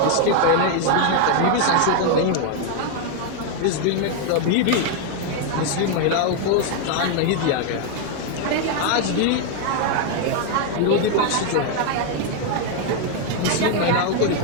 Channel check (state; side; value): different; both; correlation 0.01